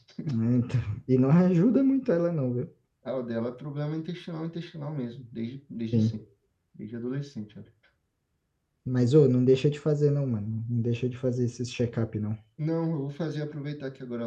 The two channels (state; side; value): identical; both; correlation 1.00